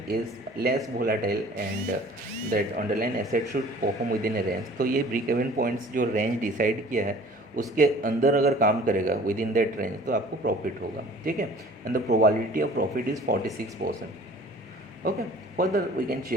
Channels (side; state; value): both; normal; correlation 0.49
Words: is less volatile and that underlying asset should perform within a range. तो ये break even points जो range decide किया है उसके अंदर अगर काम करेगा within that range तो आपको profit होगा. ठीक है. And the probability of profit is 46%. Okay. Further we can